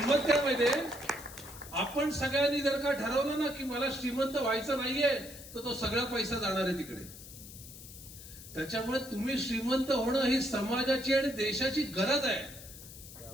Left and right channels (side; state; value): left; noise; hiss, 15 dB below the sound